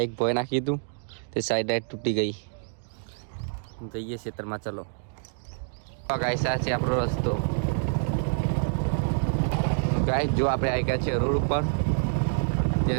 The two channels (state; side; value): silent; left; digital silence